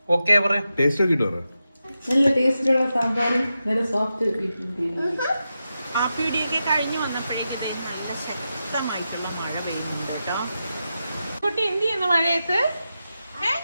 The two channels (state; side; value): inverted; both; correlation -0.90